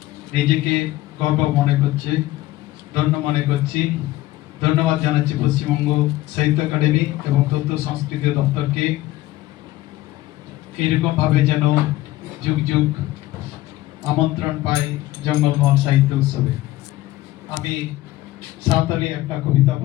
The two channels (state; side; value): quieter; right; 16.7 dB